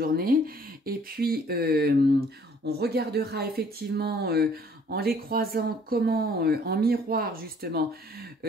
Et puis, on regardera effectivement en les croisant comment, en miroir justement,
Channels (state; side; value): normal; both; correlation 0.58